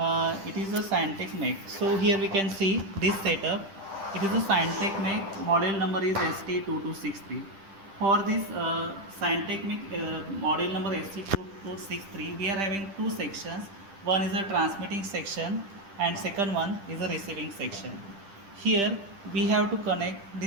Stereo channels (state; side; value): late; left; 10 ms